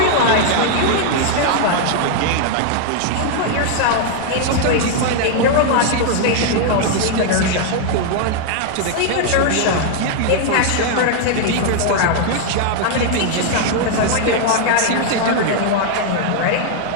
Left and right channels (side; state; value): both; different; correlation 0.00